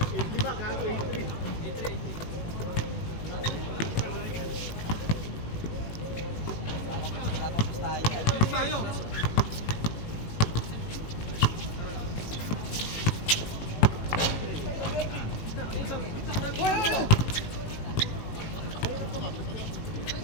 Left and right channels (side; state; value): right; late; 18 ms